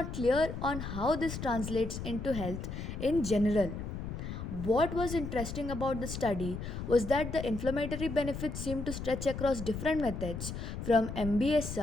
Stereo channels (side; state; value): left; noise; rumble, 6 dB below the sound